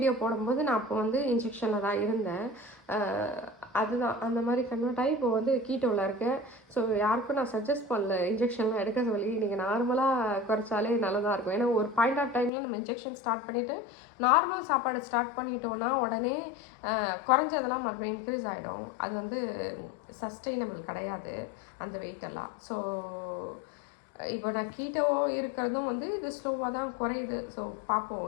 போடும்போது நான் அப்போ வந்து இன்ஜெக்ஷனில் தான் இருந்தேன். அதுதான் அந்த மாதிரி கன்வெர்ட் ஆகி இப்போ வந்து கீட்டோவில் இருக்கேன். ஸோ யாருக்கும் நான் சஜஸ்ட் பண்ணல இன்ஜெக்ஷன்லாம் எடுக்க சொல்லி. நீங்கள் நார்மலாக குறைச்சாலே நல்லதாக இருக்கும். ஏன்னா ஒரு பாயிண்ட் ஆஃப் டைமில் நம்ம இன்ஜெக்ஷன் ஸ்டார்ட் பண்ணிவிட்டு நார்மல் சாப்பாடு ஸ்டார்ட் பண்ணிட்டோன்னா உடனே குறைஞ்சதெல்லாம் மறுபடியும் இன்க்ரீஸ் ஆகிடும். அது வந்து சஸ்டெயினபிள் கிடையாது அந்த வெயிட்டெல்லாம். ஸோ இப்போ நான் கீட்டோ இருக்கிறதும் வந்து இது ஸ்லோவாக தான் குறையுது. ஸோ பார்ப்போம்,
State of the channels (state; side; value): drops out; right; at 12.5 s